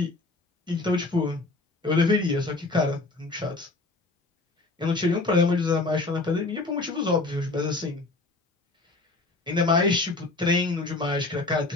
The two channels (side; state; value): right; quieter; 3.3 dB